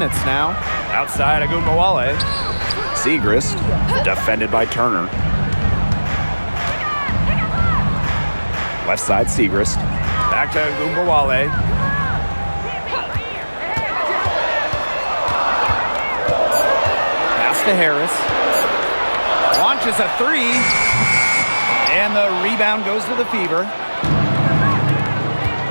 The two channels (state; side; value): inverted; both; correlation -1.00